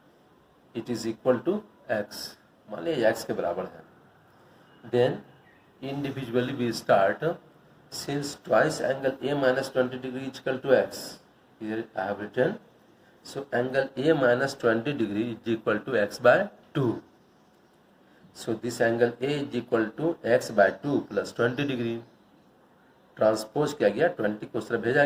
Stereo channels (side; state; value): both; identical; correlation 1.00